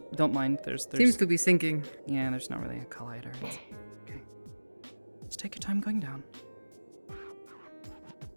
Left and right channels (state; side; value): inverted; both; correlation -1.00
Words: mind. There's Seems to be sinking. Yeah, there's not really a collider. It's okay. Just take your time going down.